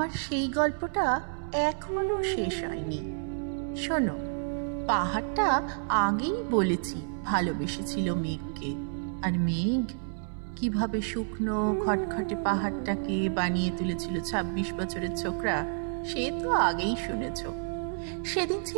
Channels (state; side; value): silent; left; 58 dB below the other